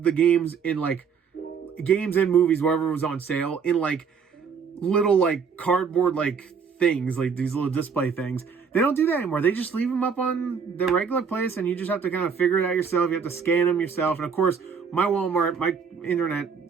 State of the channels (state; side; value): quieter; left; 6.1 dB